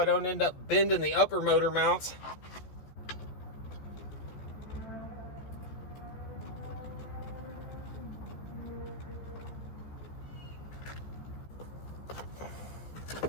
don't end up bending the upper motor mounts.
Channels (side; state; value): right; late; 14 ms